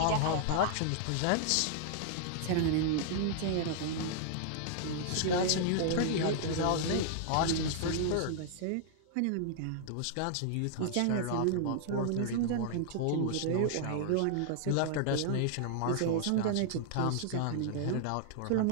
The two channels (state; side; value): different; both; correlation -0.01